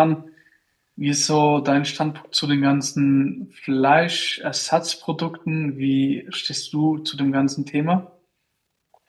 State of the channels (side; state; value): both; identical; correlation 1.00